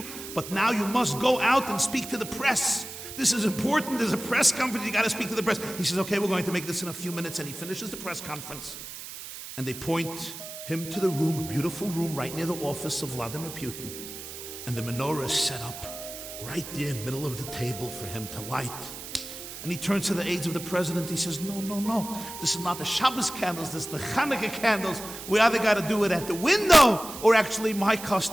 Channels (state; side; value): noise; right; hiss, 11 dB below the sound